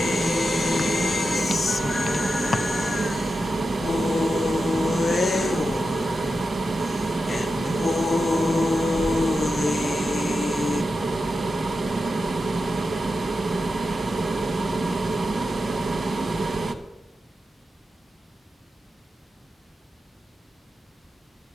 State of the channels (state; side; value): normal; both; correlation 0.90